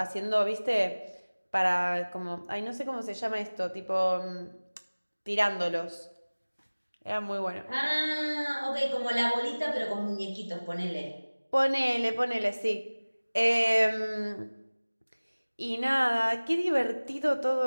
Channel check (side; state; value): both; inverted; correlation -1.00